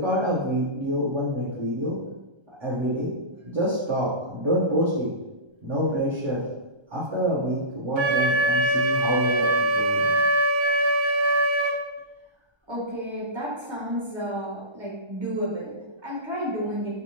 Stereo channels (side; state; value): left; late; 1.3 ms